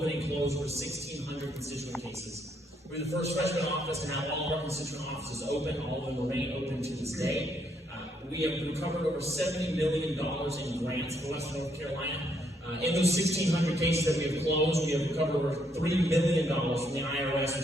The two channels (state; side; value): normal; both; correlation 0.73